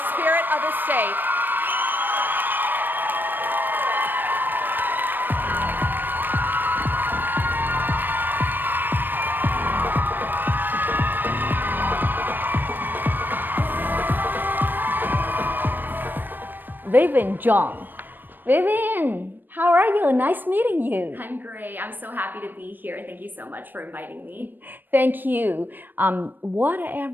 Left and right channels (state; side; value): late; left; 0.092 ms